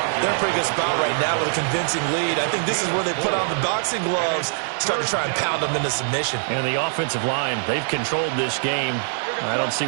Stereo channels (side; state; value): left; silent; digital silence